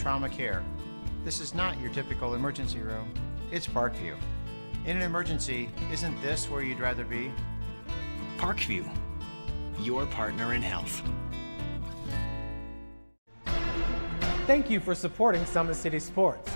care. This is not your typical emergency room. It's Parkview. In an emergency, isn't this where you'd rather be? Parkview, your partner in health. Thank you for supporting Summit City Sports.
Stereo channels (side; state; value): both; inverted; correlation -1.00